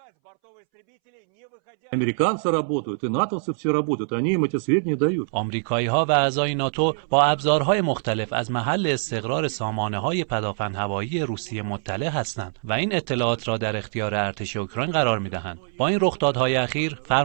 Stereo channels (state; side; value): silent; left; 63 dB below the other